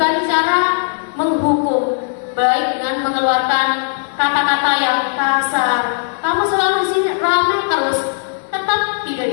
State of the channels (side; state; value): right; silent; digital silence